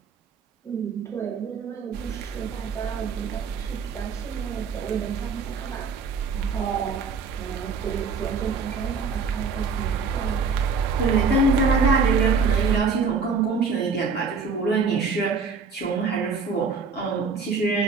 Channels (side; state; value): left; quieter; 4.9 dB